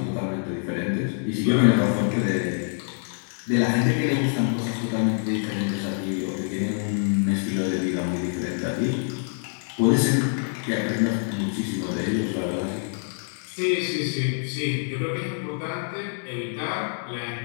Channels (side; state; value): right; silent; 61 dB below the other